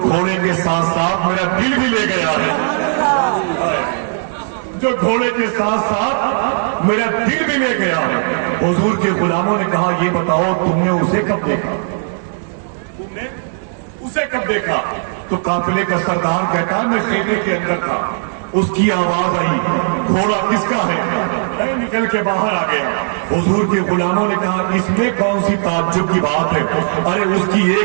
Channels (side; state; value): left; silent; digital silence